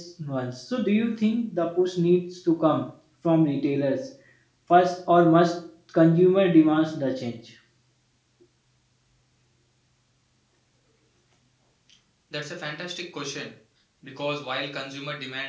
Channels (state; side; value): identical; both; correlation 1.00